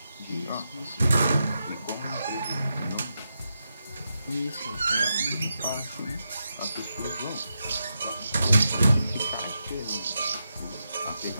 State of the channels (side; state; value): both; inverted; correlation -0.86